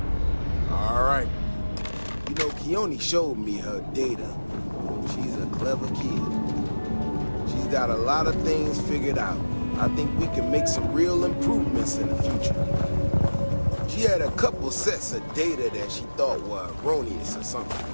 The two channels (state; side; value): inverted; both; correlation -1.00